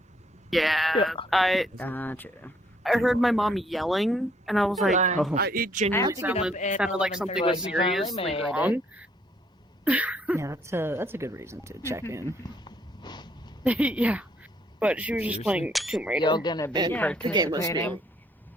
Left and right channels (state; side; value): normal; both; correlation 0.67